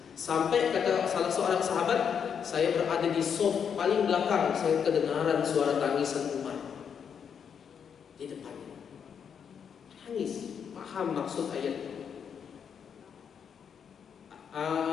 Sampai kata salah seorang sahabat, saya berada di sof paling belakang, saya kedengaran suara tangisan Umar di depannya. Nangis, paham maksud ayat.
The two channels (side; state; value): right; quieter; 7.4 dB